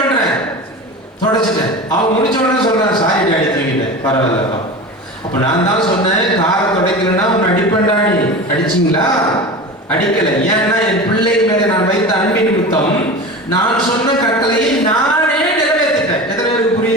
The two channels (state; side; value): normal; both; correlation 0.30